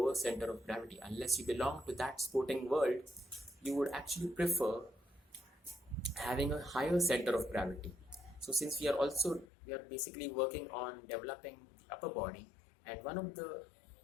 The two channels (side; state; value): right; drops out; at 9.5 s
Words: center of gravity. Unless you belong to that sporting world, you would actually prefer having a higher center of gravity. So since we are basically working on developing the upper body, and one of the